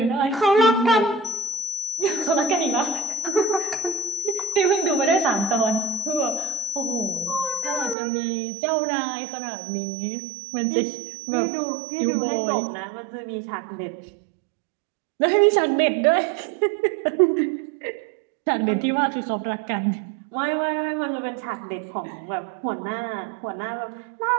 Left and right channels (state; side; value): drops out; left; at 8.0 s